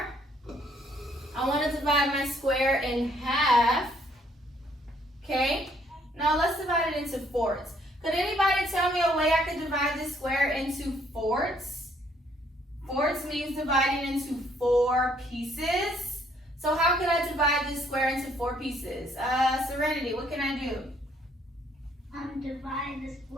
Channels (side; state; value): both; normal; correlation 0.66